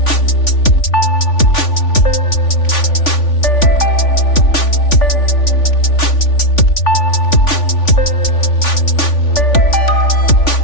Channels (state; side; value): late; right; 3.4 ms